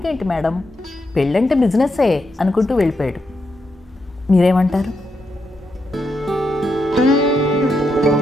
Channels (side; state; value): both; normal; correlation 0.83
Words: మేడం, పెళ్ళంటే బిజినెస్సే అనుకుంటూ వెళ్ళిపోయాడు. మీరేమంటారు?